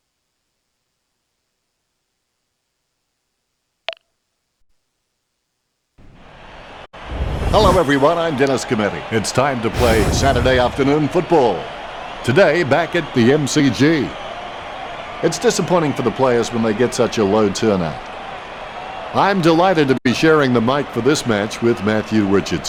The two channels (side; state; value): both; identical; correlation 1.00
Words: Hello everyone, I'm Dennis Cometti. It's time to play Saturday afternoon football. Today, back at the MCG. It's disappointing for the players when they get such a low turnout. I'm delighted to be sharing the mic for this match with Matthew